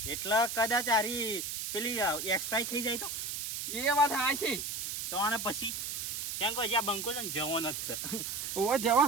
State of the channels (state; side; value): noise; right; hiss, 4 dB below the sound